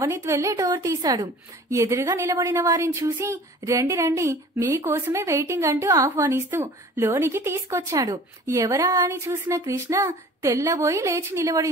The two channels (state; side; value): normal; both; correlation 0.46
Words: వెళ్లి డోర్ తీశాడు. ఎదురుగా నిలబడిన వారిని చూసి రండి రండి మీకోసమే వెయిటింగ్ అంటూ ఆహ్వానిస్తూ లోనికి తీసుకొచ్చాడు. ఎవరా అని చూసిన కృష్ణ తెల్లబోయి లేచి